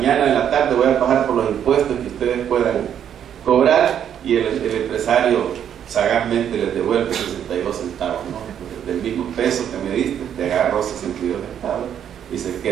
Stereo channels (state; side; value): quieter; left; 9.3 dB